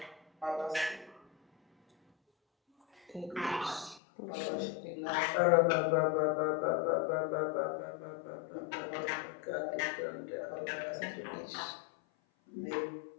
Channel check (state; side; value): drops out; right; at 4.0 s